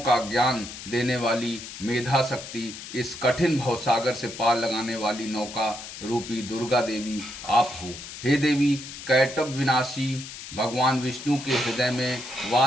ज्ञान देने वाली मेधा शक्ति, इस कठिन भवसागर से पार लगाने वाली नौका रूपी दुर्गा देवी आप हो। हे देवी, कैटभ विनाशी भगवान विष्णु के हृदय में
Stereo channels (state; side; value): noise; left; hiss, 12 dB below the sound